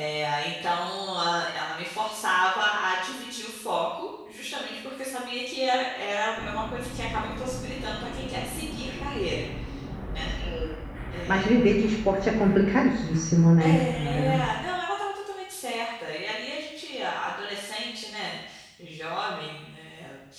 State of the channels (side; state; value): both; identical; correlation 1.00